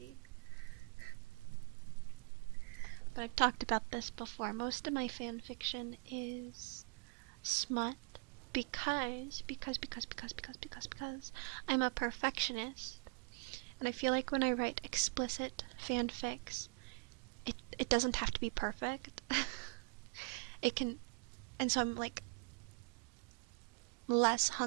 But I've talked about this before. Most of my fanfiction is smut because I'm a perfectionist. And I feel like when I write explicit fanfics, it doesn't have to be perfect. It can, and so I'm like less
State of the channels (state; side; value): quieter; left; 36.8 dB